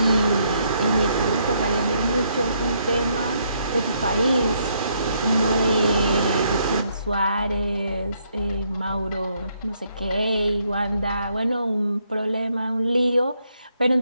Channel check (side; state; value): both; inverted; correlation -0.73